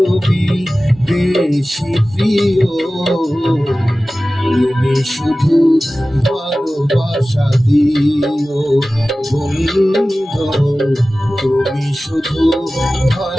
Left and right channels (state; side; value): normal; both; correlation 0.96